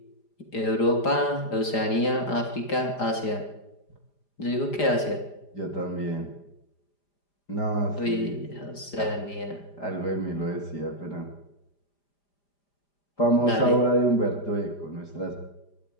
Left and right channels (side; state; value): right; late; 5.0 ms